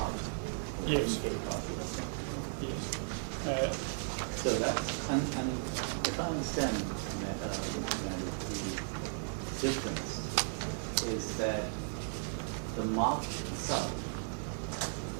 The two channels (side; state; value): left; silent; digital silence